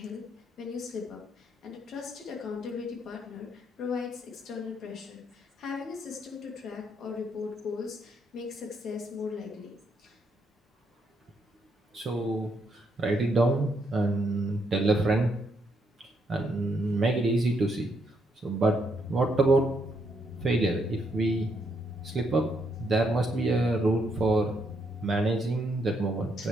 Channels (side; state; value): both; normal; correlation 0.76